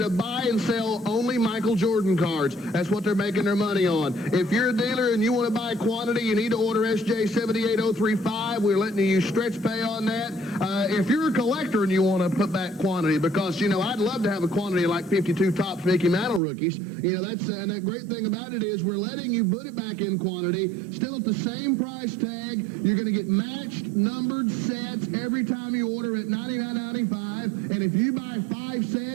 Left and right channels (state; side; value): drops out; left; at 16.4 s